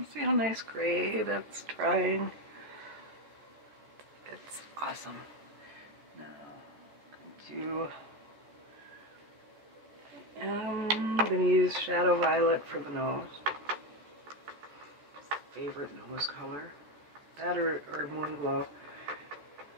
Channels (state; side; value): late; left; 14 ms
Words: See how nice gray that's drying. It's awesome. Now, I'm going to use Shadow Violet for the nose. Favorite nose color. That or Moon Glow